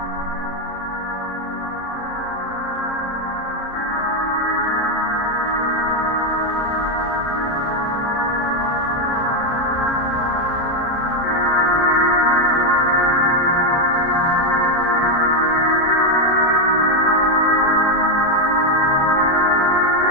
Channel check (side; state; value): right; late; 30 ms